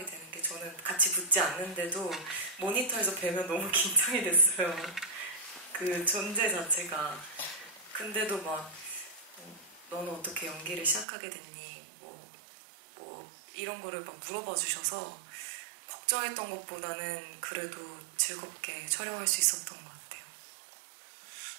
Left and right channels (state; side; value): drops out; left; at 11.1 s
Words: 되는 게 저는 같이 붙지 않는데도 모니터에서 뵈면 너무 긴장이 됐어요. 그 존재 자체가. 근데도 막 너는 어떻게 연기를 시작하게 됐니? 뭐 이런 거를 막 물어봐 주셔서 걱정했던 것보다는 그래도 즐겁게 촬영할 수 있었던 것 같아요.